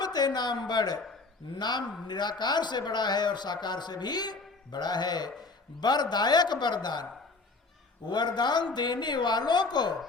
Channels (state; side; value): quieter; right; 3.8 dB